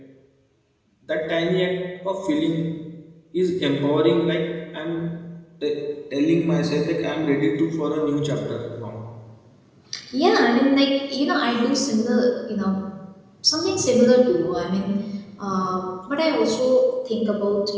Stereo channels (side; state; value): both; identical; correlation 1.00